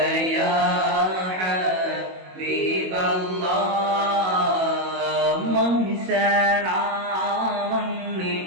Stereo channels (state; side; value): late; left; 21 ms